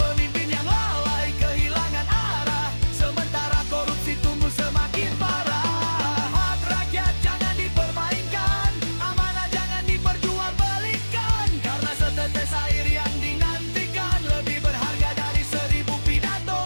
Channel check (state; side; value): inverted; both; correlation -1.00